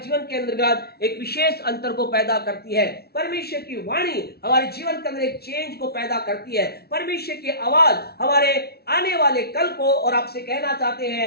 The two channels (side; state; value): right; late; 0.45 ms